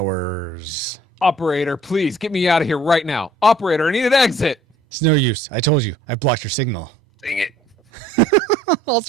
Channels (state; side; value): normal; both; correlation 0.55